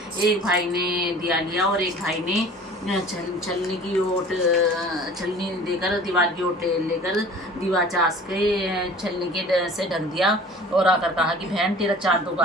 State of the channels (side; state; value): both; normal; correlation 0.45